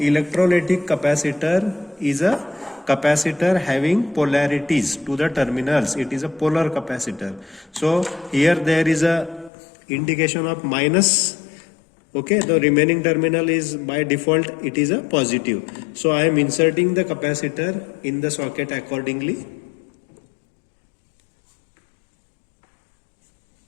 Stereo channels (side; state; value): right; drops out; at 9.5 s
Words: capacitor is a capacitor having polarities to the terminals. It is a polar capacitor. So here there is a indication of minus. Okay, the remaining terminal is by default it is a positive. So I am inserting the capacitor in the socket accordingly.